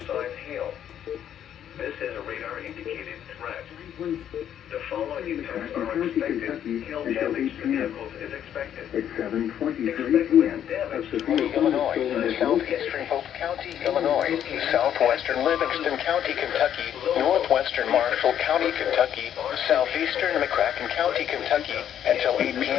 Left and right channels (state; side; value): quieter; right; 9.9 dB